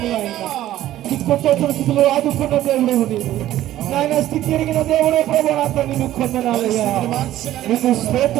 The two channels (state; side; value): quieter; left; 13.7 dB